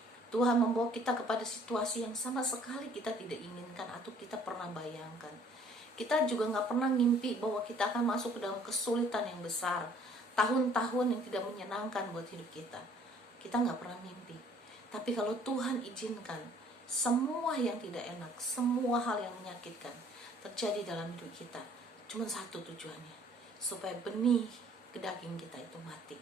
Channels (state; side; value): normal; both; correlation 0.57